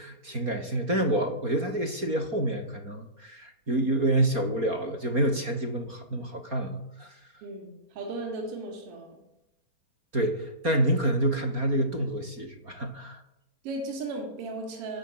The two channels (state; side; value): late; left; 4.3 ms